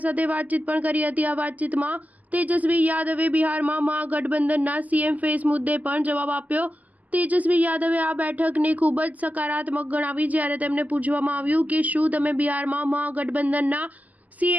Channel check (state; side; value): late; left; 0.078 ms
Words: સાથે વાતચીત પણ કરી હતી। આ વાતચીતમાં તેજસ્વી યાદવે બિહારમાં મહાગઠબંધનના સીએમ ફેસ મુદ્દે પણ જવાબ આપ્યો। તેજસ્વી યાદવે આ બેઠકને ખૂબ જ સકારાત્મક ગણાવી। જ્યારે તેમને પૂછવામાં આવ્યું કે શું તમે બિહારમાં મહાગઠબંધનના